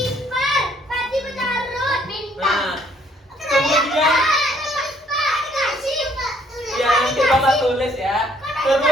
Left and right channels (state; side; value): normal; both; correlation 0.65